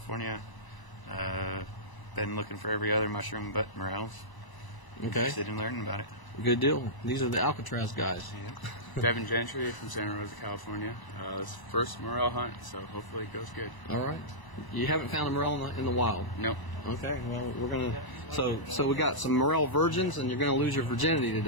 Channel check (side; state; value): right; late; 1.0 ms